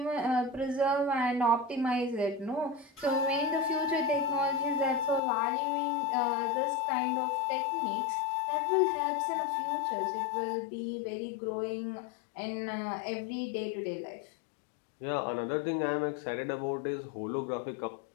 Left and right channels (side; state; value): right; drops out; at 5.2 s